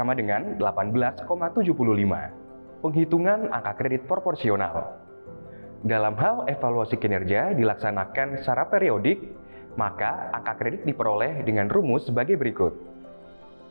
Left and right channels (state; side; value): inverted; both; correlation -1.00